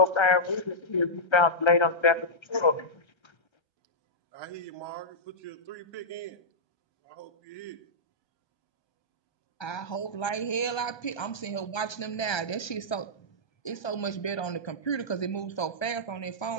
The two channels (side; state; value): right; late; 1.3 ms